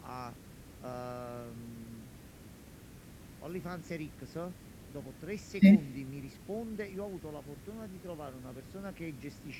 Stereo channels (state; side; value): identical; both; correlation 1.00